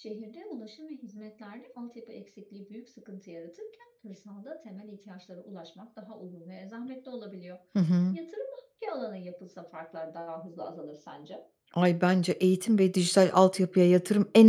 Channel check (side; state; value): both; identical; correlation 1.00